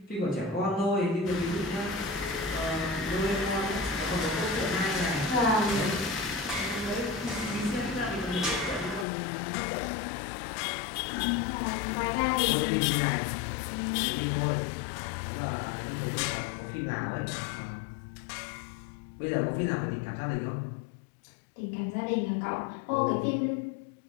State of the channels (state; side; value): drops out; right; at 9.1 s